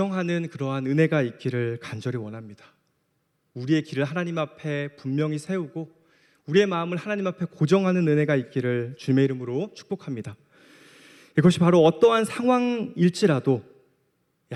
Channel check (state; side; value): identical; both; correlation 1.00